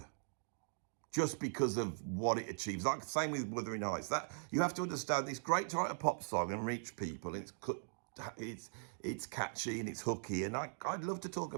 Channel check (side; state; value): left; silent; digital silence